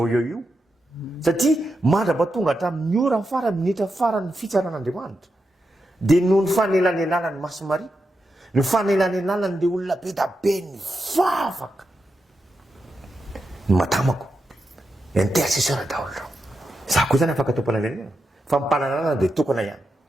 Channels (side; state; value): both; normal; correlation 0.87